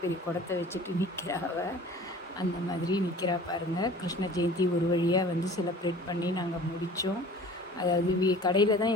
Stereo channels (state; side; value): normal; both; correlation 0.44